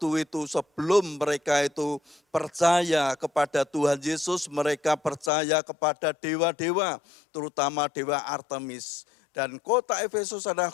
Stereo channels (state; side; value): drops out; right; at 5.3 s